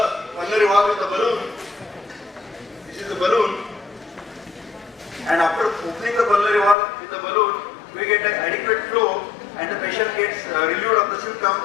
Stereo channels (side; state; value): right; drops out; at 6.8 s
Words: pulmonary valve with the balloon. This is the balloon, and after opening the pulmonary valve with the balloon, we get an adequate flow and the patient gets relieved of the symptom.